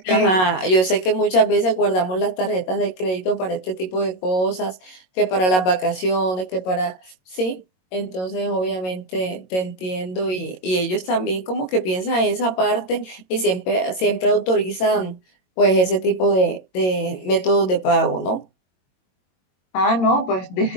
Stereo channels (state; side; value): late; right; 22 ms